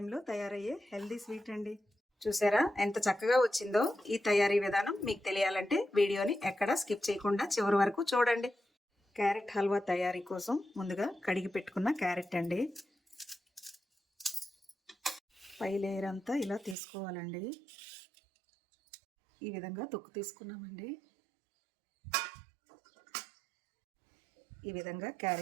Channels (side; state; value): left; drops out; at 16.8 s